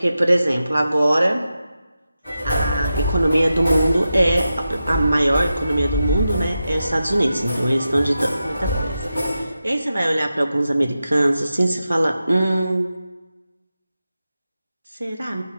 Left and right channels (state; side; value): inverted; both; correlation -0.91